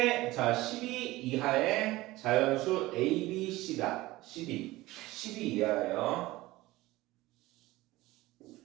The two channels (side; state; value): left; quieter; 18.7 dB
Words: 자, 12 이하의 자연수 A, B, C다. 12 이하예요.